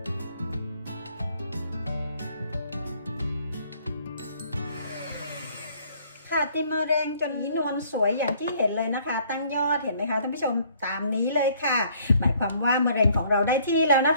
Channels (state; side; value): inverted; both; correlation -0.61